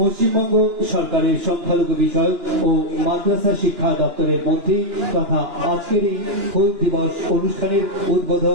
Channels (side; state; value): left; late; 2.9 ms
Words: সরকারের সংখ্যালঘু বিষয়ক ও মাদ্রাসা শিক্ষা দপ্তরের মন্ত্রী তথা আজকের এই হুল দিবস অনুষ্ঠানের